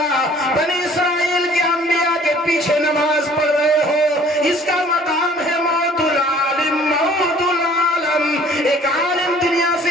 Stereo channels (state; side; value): normal; both; correlation 0.53